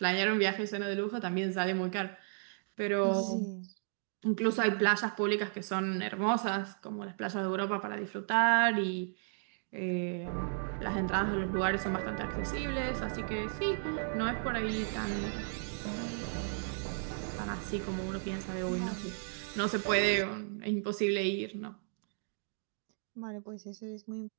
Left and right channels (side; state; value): left; silent; digital silence